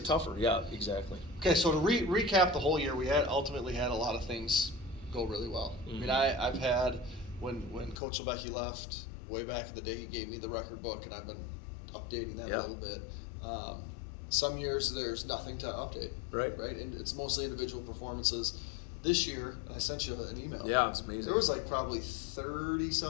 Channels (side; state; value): right; drops out; at 8.0 s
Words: tougher. Yeah, exactly. Okay, so to recap the whole year, we ultimately had a lot of things go really well. Mm-hmm. I mean, I've had when Coach Lebecki left way back in the day, he gave me the record book, and I've been updating that a little bit. Some years there's nothing to update. Right. And it's mostly individual performances. This year, I sent you an email. Yeah, it's amazing. There was like probably 30